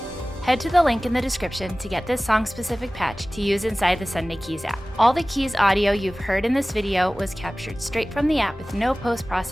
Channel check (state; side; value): normal; both; correlation 0.98